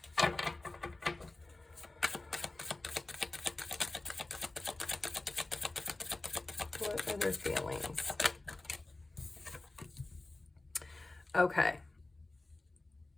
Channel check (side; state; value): right; quieter; 3.0 dB